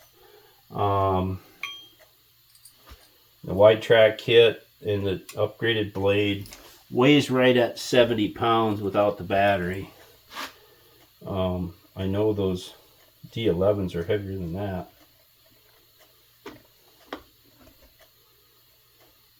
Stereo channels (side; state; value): both; identical; correlation 1.00